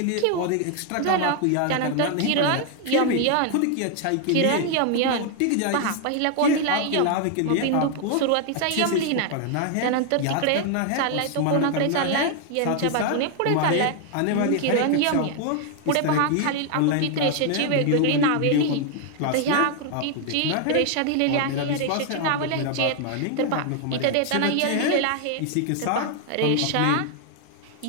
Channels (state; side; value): different; both; correlation 0.00